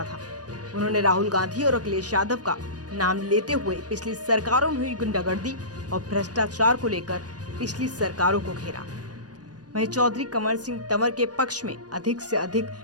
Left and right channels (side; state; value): left; late; 0.69 ms